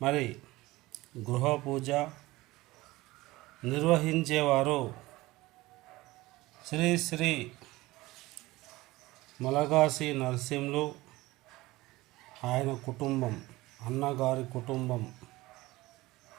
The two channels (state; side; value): quieter; left; 19.4 dB